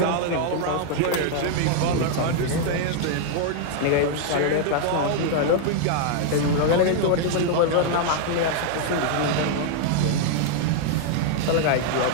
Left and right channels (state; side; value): different; both; correlation 0.00